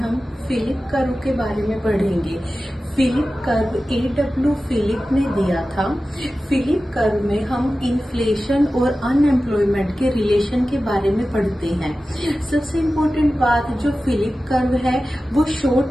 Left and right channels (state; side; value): normal; both; correlation 0.95